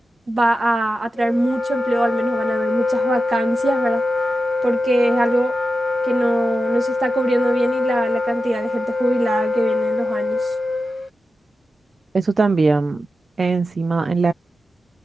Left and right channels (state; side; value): normal; both; correlation 0.91